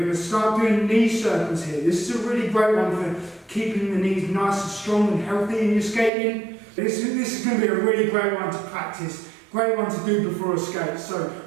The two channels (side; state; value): left; drops out; at 6.1 s